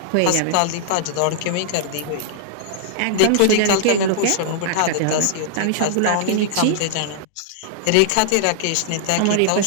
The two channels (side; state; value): both; different; correlation -0.01